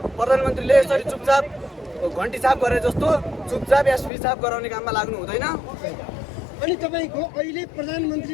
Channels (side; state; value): right; drops out; at 4.1 s